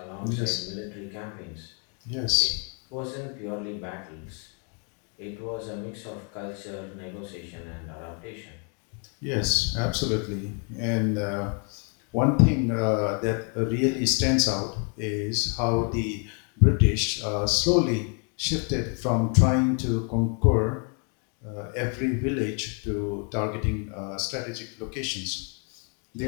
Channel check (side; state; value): right; quieter; 38.8 dB